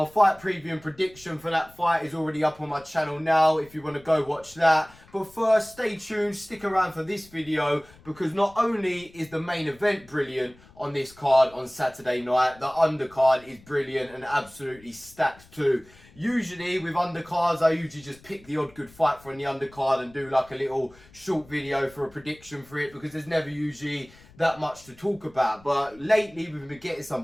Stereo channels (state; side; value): noise; left; rumble, 25 dB below the sound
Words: fight preview and prediction for that fight is already up on my channel now if you want to go watch that. But first, stay tuned, stick around for this video, because not only is the main event brilliant on this card on Saturday night, the undercard is brilliant and absolutely stacked too. Usually with undercards, I usually just pick the odd good fight from the undercard and do like a little short video for a prediction for it, because there's never usually that much to talk about. But lately we've been getting